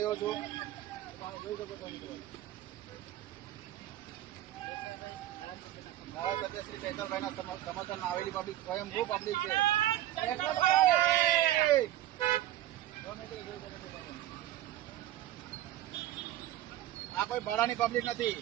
છું. તમે જોઈ શકો છો મિત્રો ધારાસભ્ય શ્રી ચૈતરભાઈના સમર્થનમાં આવેલી પબ્લિક સ્વયંભૂ પબ્લિક છે. આ કોઈ ભાડાની પબ્લિક નથી,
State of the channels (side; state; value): left; quieter; 13.8 dB